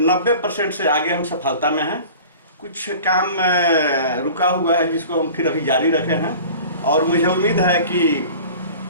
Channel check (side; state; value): both; inverted; correlation -0.42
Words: 90% से आगे हम सफलता में हैं। कुछ काम रुका हुआ है जिसको हम फिर अभी जारी रखे हैं, और मुझे उम्मीद है कि